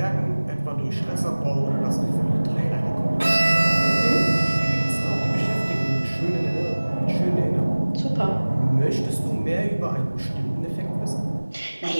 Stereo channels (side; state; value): both; inverted; correlation -1.00